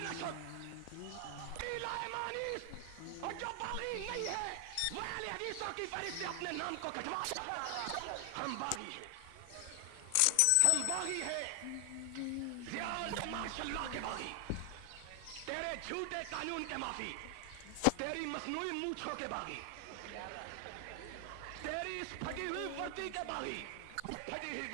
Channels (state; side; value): different; both; correlation 0.00